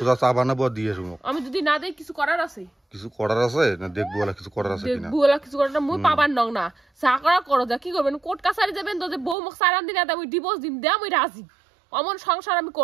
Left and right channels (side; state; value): left; drops out; at 9.3 s